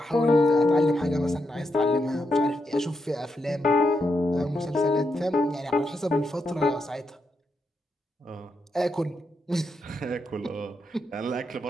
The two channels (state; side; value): normal; both; correlation 0.83